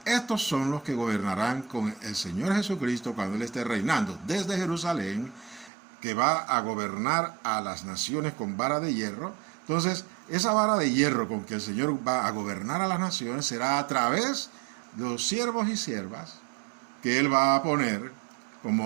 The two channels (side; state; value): left; drops out; at 5.7 s